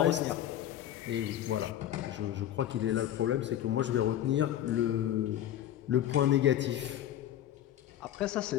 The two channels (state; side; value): quieter; right; 11.8 dB